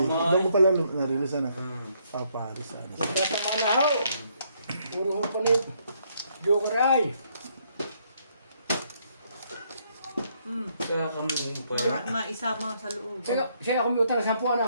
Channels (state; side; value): inverted; both; correlation -0.71